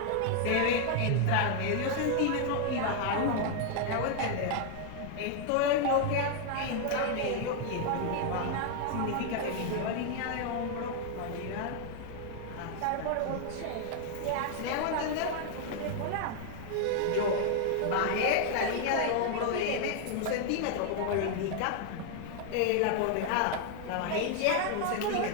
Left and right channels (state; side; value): different; both; correlation 0.00